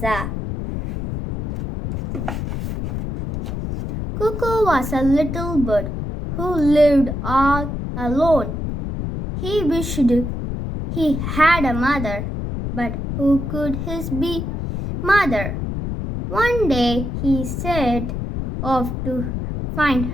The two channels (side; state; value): left; noise; rumble, 4 dB below the sound